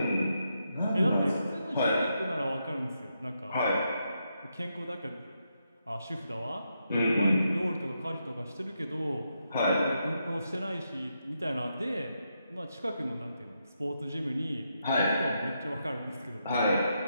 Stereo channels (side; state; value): both; inverted; correlation -0.82